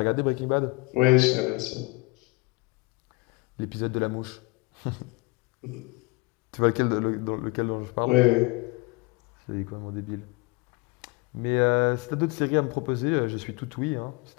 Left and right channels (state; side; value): quieter; right; 26.1 dB